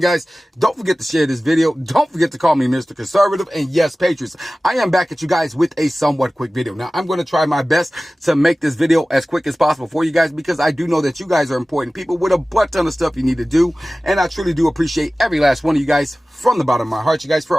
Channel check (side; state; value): both; normal; correlation 0.97